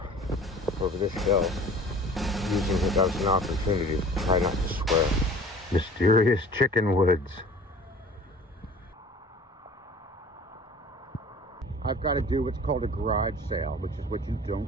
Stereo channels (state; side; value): normal; both; correlation 0.45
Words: over this hill, using it as an opportunity to try not to swear. Mysterious chicken woods. I've got to do what's called a garage sale, which is what you